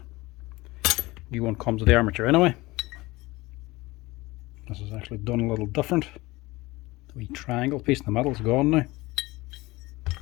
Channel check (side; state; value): right; quieter; 20.9 dB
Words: new one comes with the armature anyway. This is actually done a little different. The wee triangle piece in the middle is gone now.